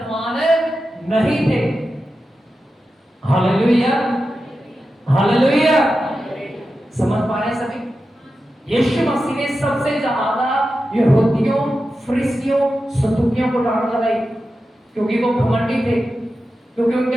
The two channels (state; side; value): normal; both; correlation 0.91